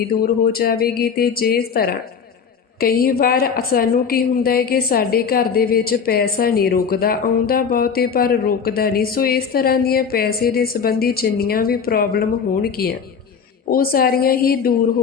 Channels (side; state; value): right; quieter; 6.4 dB